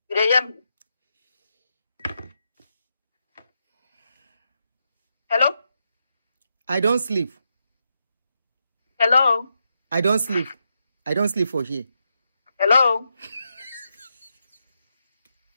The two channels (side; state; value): both; inverted; correlation -0.84